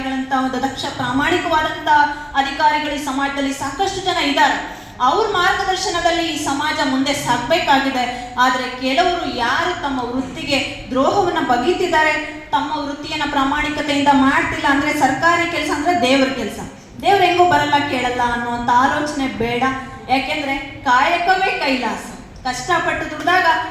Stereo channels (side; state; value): both; identical; correlation 1.00